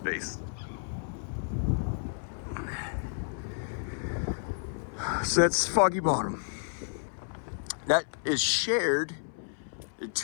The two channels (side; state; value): right; silent; 57 dB below the other